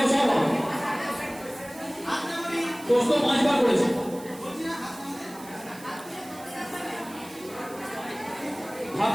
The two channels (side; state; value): right; noise; hiss, 19 dB below the sound